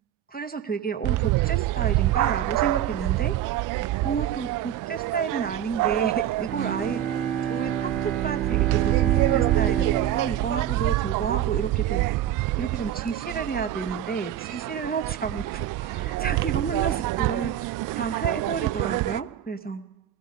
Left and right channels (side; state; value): left; quieter; 10.7 dB